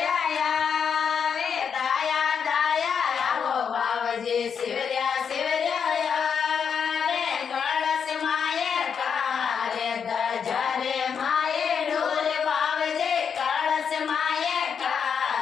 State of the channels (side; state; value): right; quieter; 6.9 dB